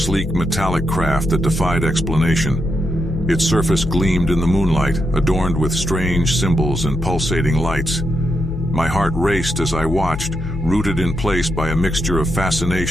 metallic craft that defied explanation. Its surface gleamed in the moonlight, adorned with strange symbols and pulsating lights. My heart raced as I watched, rooted in place by a mixture of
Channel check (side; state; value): left; noise; hum, 7 dB below the sound